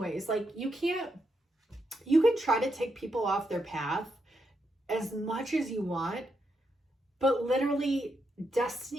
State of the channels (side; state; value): both; normal; correlation 0.82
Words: Like you can try to take people off their path as much as you want, but literally